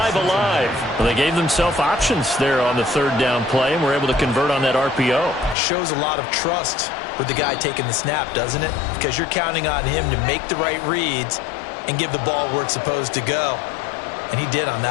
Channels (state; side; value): drops out; right; at 5.6 s